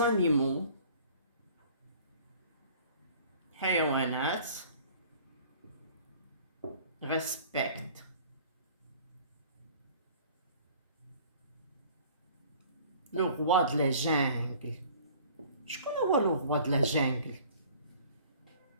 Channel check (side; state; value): both; inverted; correlation -0.50